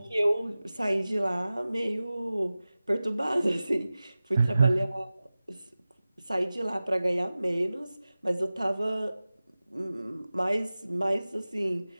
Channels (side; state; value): both; inverted; correlation -0.97